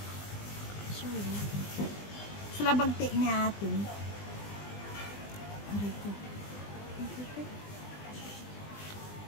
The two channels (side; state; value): right; late; 20 ms